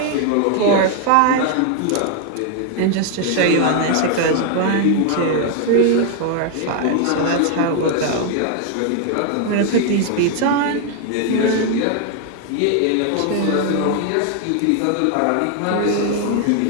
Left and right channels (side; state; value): both; different; correlation 0.00